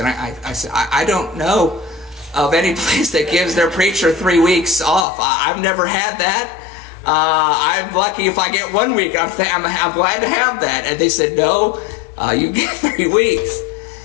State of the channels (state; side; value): drops out; right; at 5.1 s